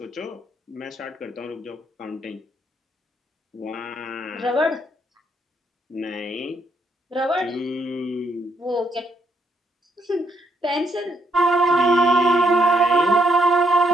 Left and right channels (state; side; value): normal; both; correlation 0.73